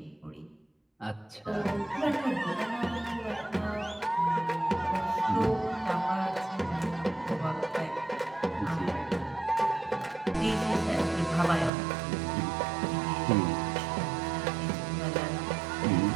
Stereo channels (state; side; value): drops out; left; at 11.7 s